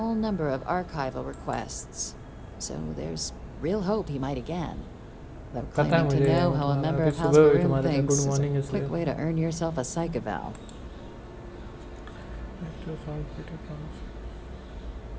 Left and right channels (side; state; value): both; identical; correlation 1.00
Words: number of archival requests, so there's real hope he might again. Though claiming to know how a member of House Varun thinks is a quick way to earn yourself a psych eval.